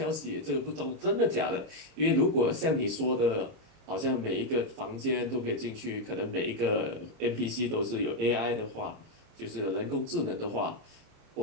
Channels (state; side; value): late; left; 26 ms